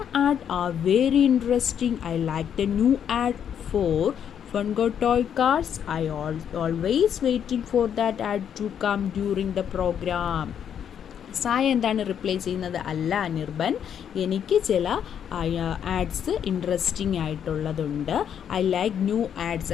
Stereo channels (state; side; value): quieter; right; 8.6 dB